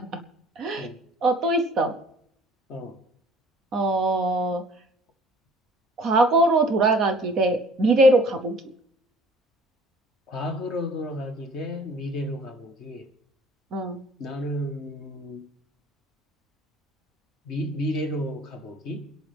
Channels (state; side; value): normal; both; correlation 0.52